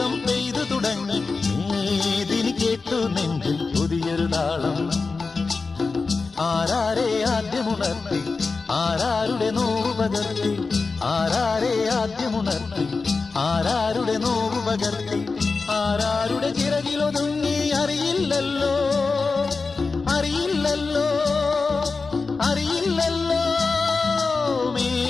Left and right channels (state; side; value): quieter; right; 4.2 dB